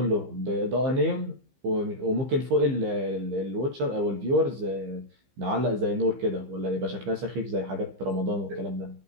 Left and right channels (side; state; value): left; late; 15 ms